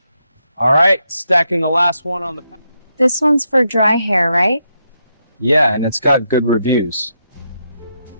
All right, stacking the last one on the... This one's for dry hair, right? Yeah, and it's got good reviews.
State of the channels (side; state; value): both; inverted; correlation -0.81